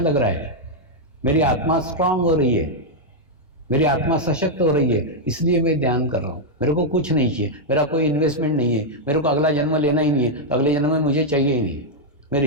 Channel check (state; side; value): normal; both; correlation -0.02